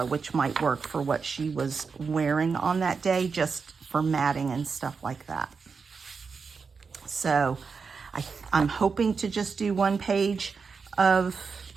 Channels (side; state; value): left; quieter; 5.2 dB